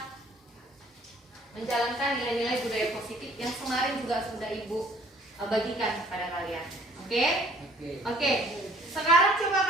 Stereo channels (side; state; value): both; normal; correlation 0.57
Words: menjalankan nilai-nilai budaya positif yang kemarin juga sudah Ibu bagikan kepada kalian. Oke? Oke. Sekarang coba